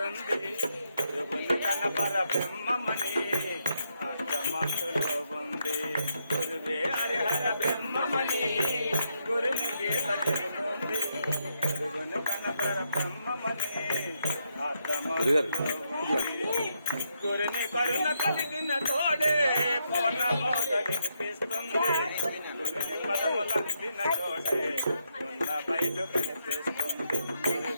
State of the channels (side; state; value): both; inverted; correlation -0.79